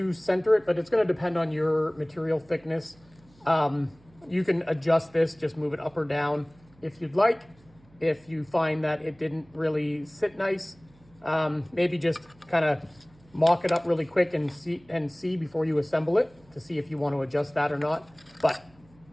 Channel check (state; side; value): noise; right; hum, 29 dB below the sound